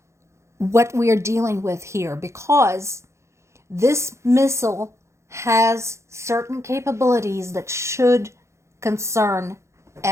what we are dealing with here, because this missile has certain capabilities that should concern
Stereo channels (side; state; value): left; late; 0.14 ms